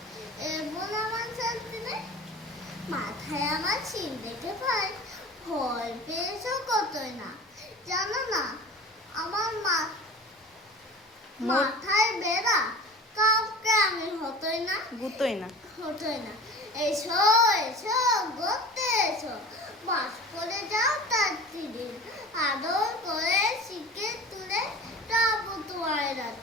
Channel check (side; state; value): both; normal; correlation 0.39